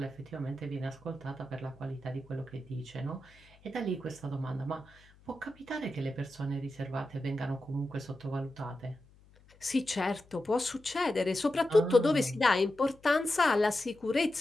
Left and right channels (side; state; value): left; noise; hum, 27 dB below the sound